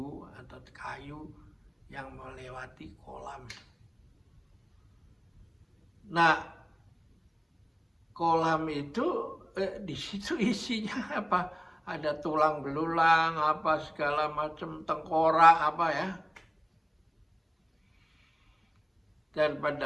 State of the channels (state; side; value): identical; both; correlation 1.00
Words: atau kayu yang melewati kolam. Nah, kolam itu di situ isinya apa? Ada tulang belulang, segala macam, tengkorak ya. Dan